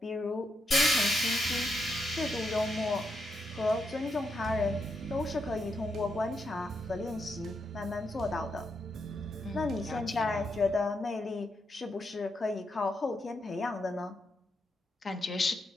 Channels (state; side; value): normal; both; correlation 0.82